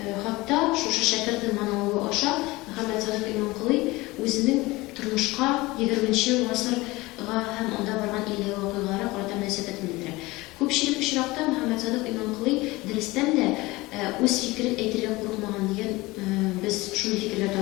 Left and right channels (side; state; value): right; quieter; 21.2 dB